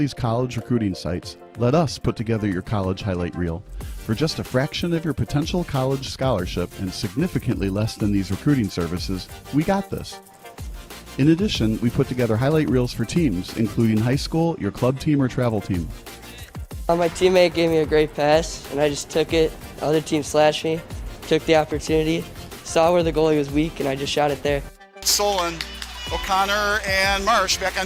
college recruiting sites, let us put together your college highlight reel. For just a fraction of your potential college scholarship and significantly less than these recruiting services, we got this. In addition, we put together highlight reels for teams, including high school, your club team, or travel team. My teammate gave me a great pass, and I just took it. The other team slashed me, took the opportunity, saw where the goalie was weak, and I just shot it there. Solon, O'Connor, and Marsh back on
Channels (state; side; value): identical; both; correlation 1.00